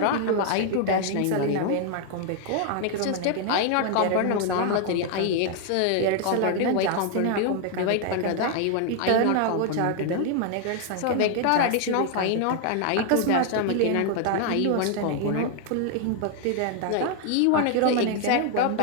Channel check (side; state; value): both; different; correlation 0.00